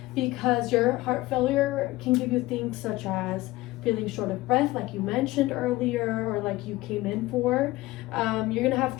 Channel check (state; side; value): quieter; right; 18.8 dB